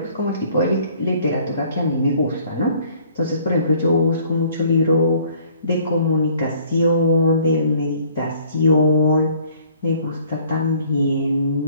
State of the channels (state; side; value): inverted; both; correlation -0.57